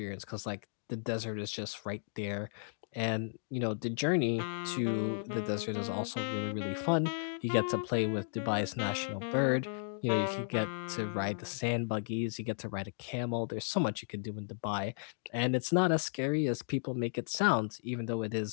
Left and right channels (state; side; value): silent; right; digital silence